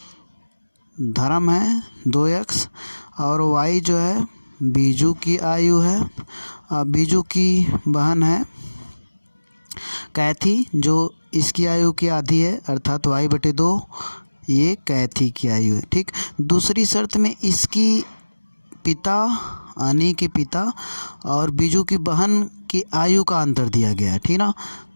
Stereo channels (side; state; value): both; inverted; correlation -1.00